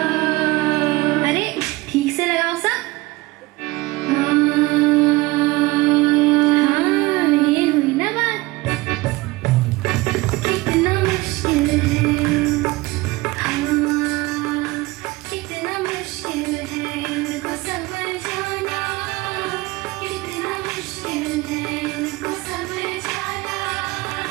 अरे ठीक से लगाओ सब।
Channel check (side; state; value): left; quieter; 21.4 dB